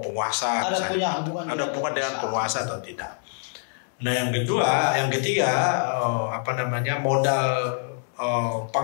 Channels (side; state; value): right; silent; 62 dB below the other